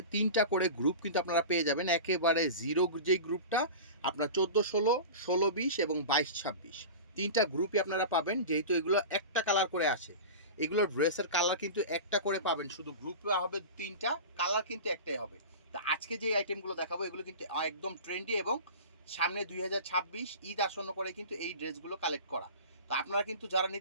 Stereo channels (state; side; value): inverted; both; correlation -0.31